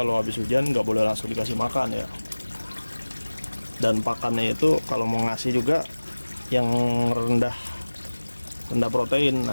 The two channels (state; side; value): inverted; both; correlation -1.00